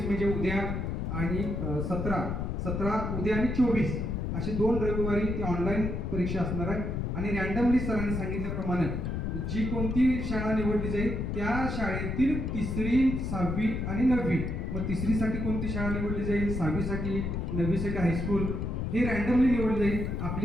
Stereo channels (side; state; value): left; noise; rumble, 2 dB below the sound